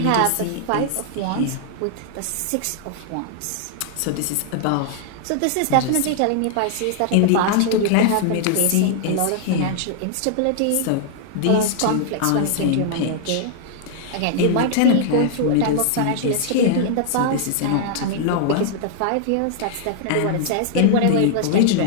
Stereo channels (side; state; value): both; different; correlation -0.01